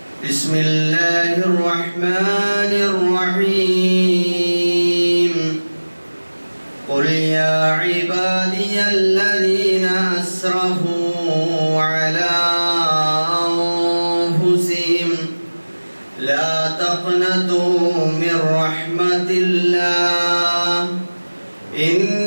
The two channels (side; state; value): both; inverted; correlation -1.00